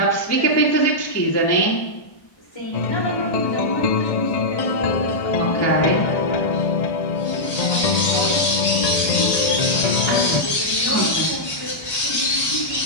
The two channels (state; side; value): late; right; 1.1 ms